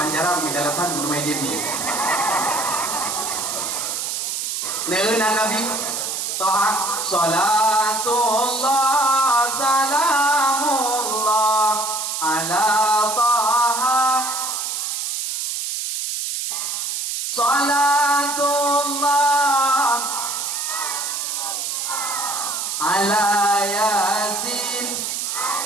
di dalatan guru meja ni. Neuna Nabi Taha salatullah salamullah ala Taha salatullah ala yasin.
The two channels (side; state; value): right; noise; hiss, 2 dB below the sound